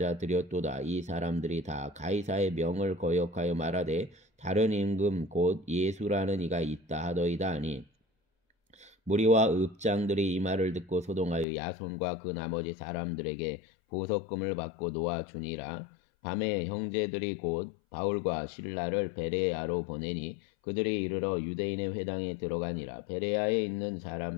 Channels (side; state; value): right; drops out; at 11.5 s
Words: 이 사람들이 다 가이사의 명을 거역하여 말하되 다른 임금 곧 예수라는 이가 있다 하더이다 하니 무리와 읍장들이 이 말을 듣고 소동하여 야손과 그 나머지 사람들에게 보석금을 받고 놓아주니라. 밤에 형제들이 곧 바울과 실라를 베레아로 보내니 그들이 이르러 유대인의 회당에 들어가니라. 베레아에 있는